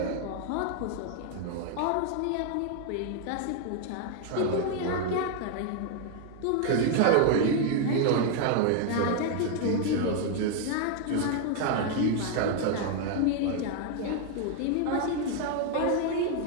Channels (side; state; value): both; different; correlation 0.01